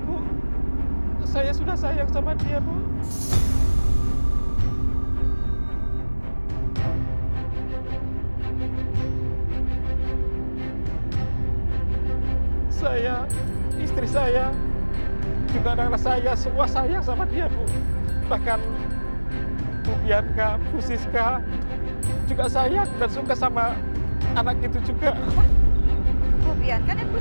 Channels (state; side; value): inverted; both; correlation -1.00